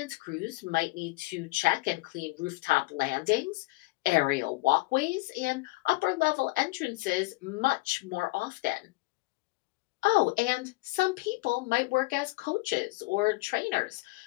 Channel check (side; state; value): right; quieter; 23.1 dB